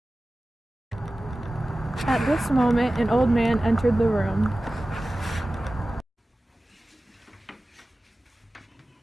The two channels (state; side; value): normal; both; correlation 0.96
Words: At this moment, an old man entered the room.